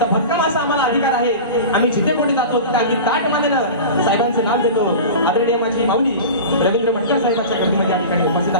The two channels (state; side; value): inverted; both; correlation -0.32